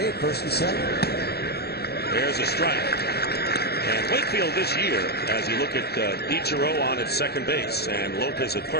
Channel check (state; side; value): late; right; 0.47 ms